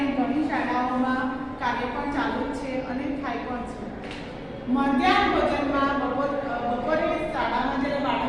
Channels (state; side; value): identical; both; correlation 1.00